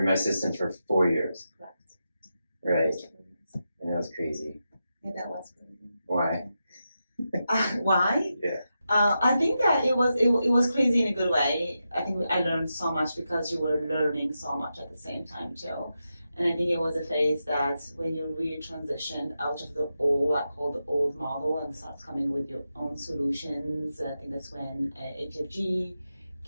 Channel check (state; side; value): inverted; both; correlation -0.89